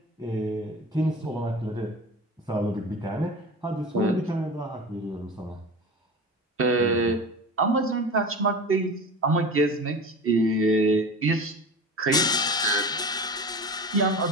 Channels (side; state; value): both; normal; correlation 0.32